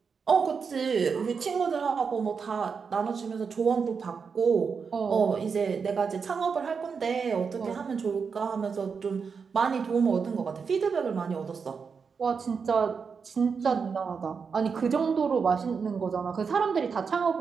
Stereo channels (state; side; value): quieter; left; 5.7 dB